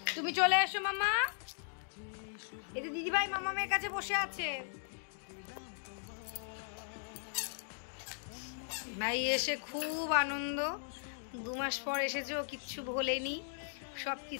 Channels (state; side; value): silent; right; digital silence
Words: তুমি চলে এসো মামা। এই যে দিদিভাই মামামের কাছে বসে আছে। ভাই এসে খুব আনন্দ, 2 মাস পর এসেছে, ও কিচ্ছু ভোলেনি, সব